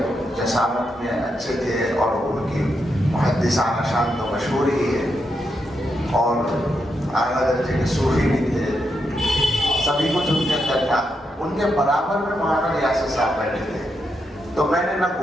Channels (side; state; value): both; normal; correlation 0.83